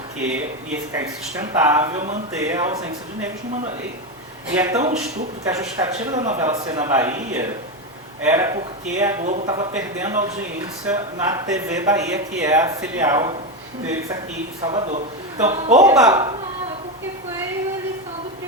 ia ficar insustentável manter a ausência de negros numa novela. E é tão estúpido que a justificativa da novela ser na Bahia era porque a Globo estava perdendo audiência na TV Bahia, que é a filial deles aqui em Salvador. Então, porque foi a eleição do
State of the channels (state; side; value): normal; both; correlation 0.13